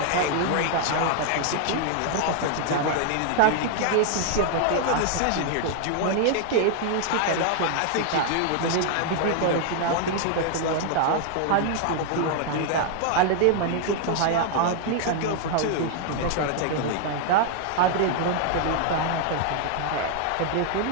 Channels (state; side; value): different; both; correlation 0.00